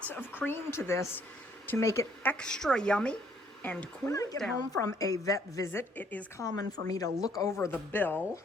of cream to this to make it extra yummy and cool it down. When I get home from a vet visit, it is common for me to look over the bill,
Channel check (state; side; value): normal; both; correlation 0.65